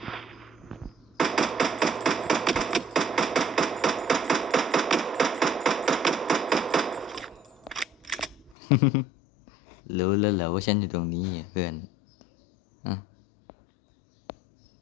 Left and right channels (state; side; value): drops out; right; at 8.6 s